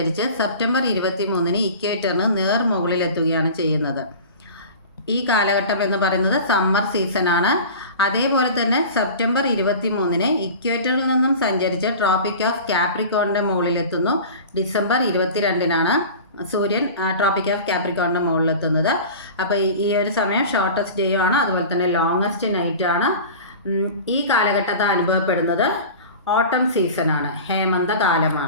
സെപ്റ്റംബർ 23-ന് ഇക്വേറ്ററിന് മുകളിലെത്തുകയാണ് ചെയ്യുന്നത്. ഈ കാലഘട്ടം എന്ന് പറയുന്നത് സമ്മർ സീസണാണ്. അതേപോലെ തന്നെ സെപ്റ്റംബർ 23-ന് ഇക്വേറ്ററിൽ നിന്നും സഞ്ചരിച്ച് ട്രോപ്പിക് ഓഫ് കാപ്രിക്കോണിൻ്റെ മുകളിലെത്തുന്നു. ഡിസംബർ 22-നാണ് സൂര്യൻ ട്രോപ്പിക് ഓഫ് കാപ്രിക്കോണിൻ്റെ മുകളിലെത്തുന്നത്. അപ്പോൾ ഈ ഒരു സമയം ഷോർട്ടസ്റ്റ് ഡേ ആണ്, അതുപോലെ തന്നെ ലോങ്ങസ്റ്റ് നൈറ്റ് ആണ്. ഈ കാലഘട്ടത്തിൽ അനുഭവപ്പെടുന്നത് ഓട്ടം സീസണാണ്,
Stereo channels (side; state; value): both; inverted; correlation -0.36